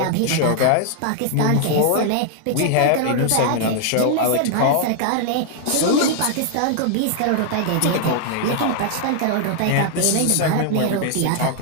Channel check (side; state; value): both; different; correlation 0.00